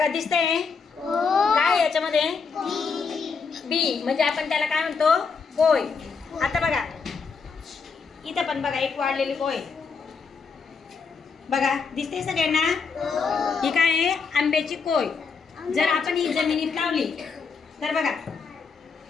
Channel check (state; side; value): quieter; right; 5.2 dB